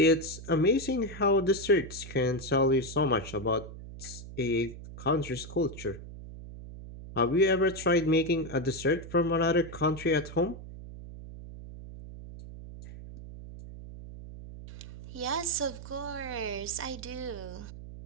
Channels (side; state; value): right; noise; hum, 13 dB below the sound